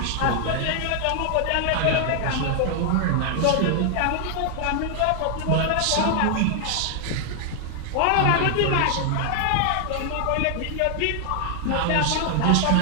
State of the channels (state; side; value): different; both; correlation 0.00